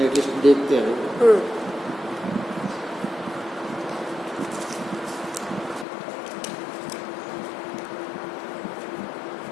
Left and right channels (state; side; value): drops out; right; at 5.9 s